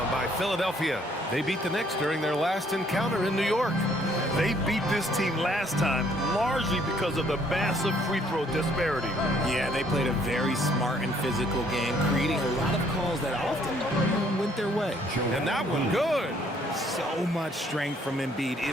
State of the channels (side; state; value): both; normal; correlation 0.64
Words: by Philadelphia. They beat the Knicks during their last encounter in New York. They beat this team last time largely because of the massive free throw disparity. Yeah, they played a very smart and physical game, creating a lot of calls that often went their way. And that one good. So much strength from Embiid.